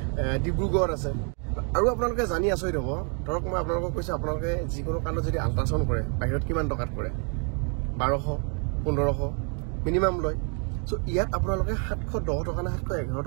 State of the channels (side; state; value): left; quieter; 39.0 dB